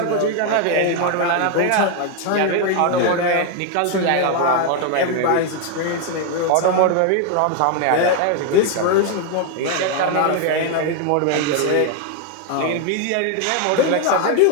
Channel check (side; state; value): both; different; correlation 0.01